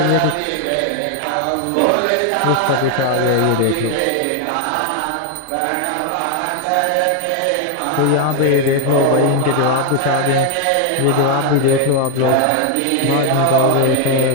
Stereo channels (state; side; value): different; both; correlation 0.01